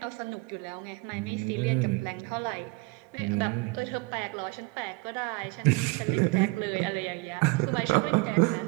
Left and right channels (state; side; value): quieter; left; 25.4 dB